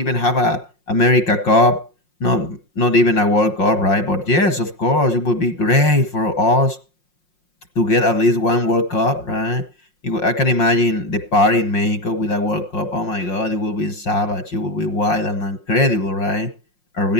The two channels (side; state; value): right; late; 5.6 ms